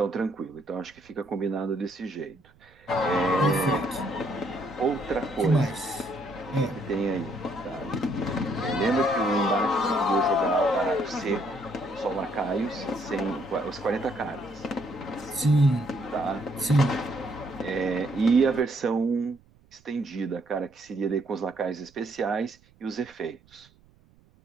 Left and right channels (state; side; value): noise; right; rumble, 30 dB below the sound